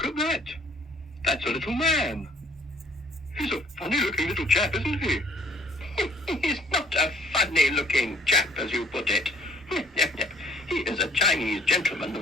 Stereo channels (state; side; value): normal; both; correlation 0.58